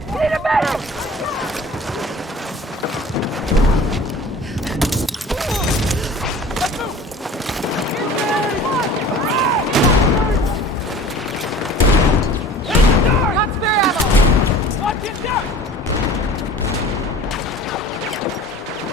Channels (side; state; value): both; normal; correlation 0.43